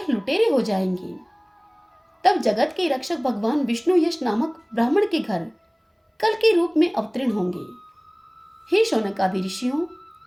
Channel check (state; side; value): identical; both; correlation 1.00